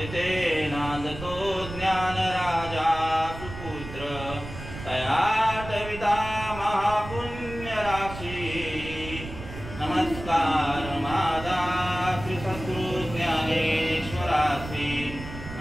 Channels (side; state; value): right; noise; rumble, 11 dB below the sound